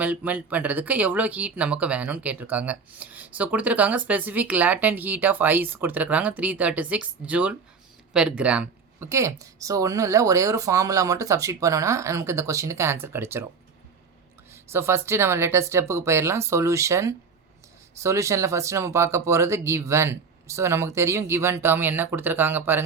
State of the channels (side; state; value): left; quieter; 5.3 dB